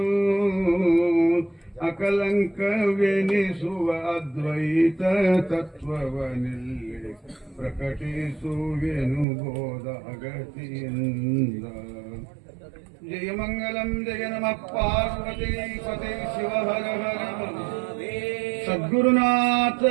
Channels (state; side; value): drops out; left; at 9.2 s